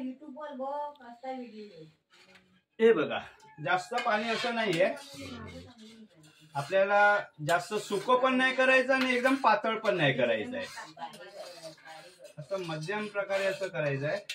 वर बघ असा व्हिडिओ. हे बघा जास्त पाणी असं नाहीये, आपल्याला जास्त सुकं पण नाही करायचं आणि एकदम पातळ पण नाही करायचं आहे. असं मध्यम प्रकारे असं करायचं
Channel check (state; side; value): identical; both; correlation 1.00